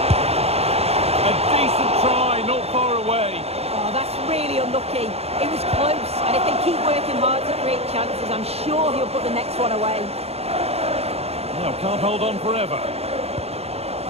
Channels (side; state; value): left; late; 0.30 ms